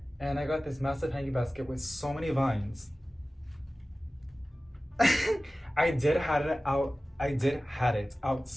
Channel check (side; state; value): both; normal; correlation 0.97